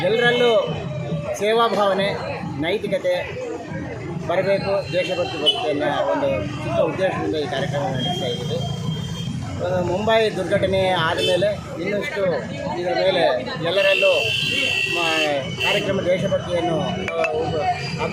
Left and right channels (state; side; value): identical; both; correlation 1.00